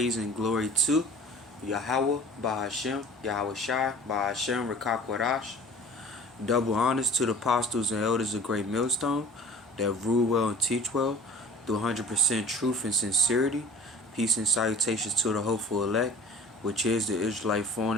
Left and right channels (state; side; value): normal; both; correlation 0.46